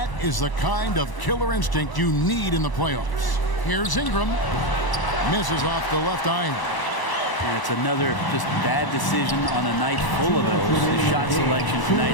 is the kind of killer instinct you need in the playoffs. Here's Ingram. Misses off the left iron. And it's another just bad decision on a night full of those. His shot selection tonight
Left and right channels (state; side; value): late; right; 1.0 ms